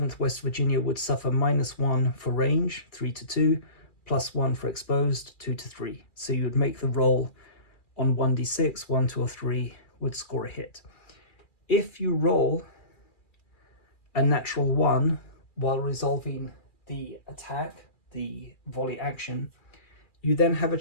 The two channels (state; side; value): late; right; 2.4 ms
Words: West Virginia would suffer -1 for range, 3 to 2, +1 for exposed, 2 to 3. So you would make the roll on 1d6, 1, 2, or 3 would score a hit. If you roll a natural 1 while resolving the attack, the volley action, you then have a